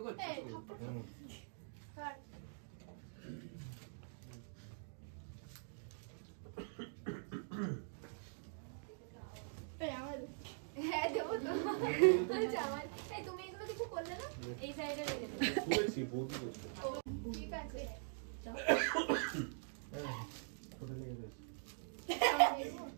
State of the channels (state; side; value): silent; left; digital silence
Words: হ্যাঁ দেবো তো। জামাই এই তুমি এগুলো কিছু করলে না? এই সাইডে রেখে দে। শুয়েছি বৌদি করছে ঠিক আছে।